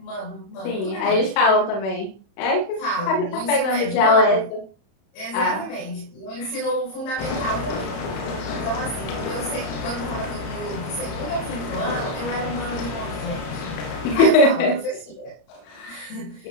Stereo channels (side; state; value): right; late; 31 ms